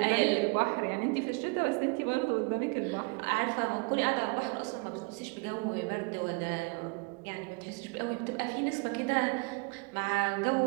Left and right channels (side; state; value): left; quieter; 30.3 dB